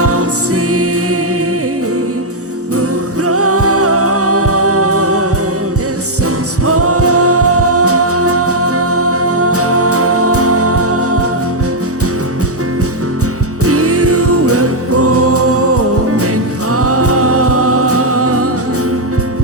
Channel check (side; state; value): both; normal; correlation -0.03